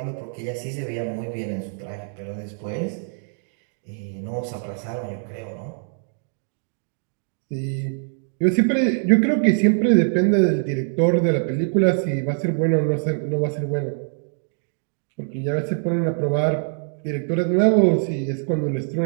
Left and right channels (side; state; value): left; silent; 63 dB below the other